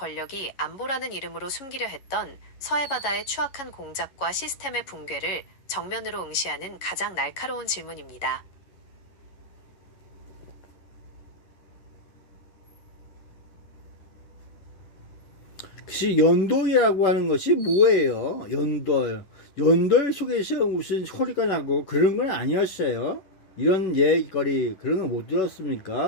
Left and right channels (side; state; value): right; late; 11 ms